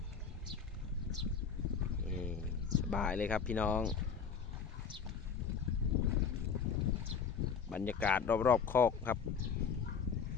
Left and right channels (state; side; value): quieter; right; 6.3 dB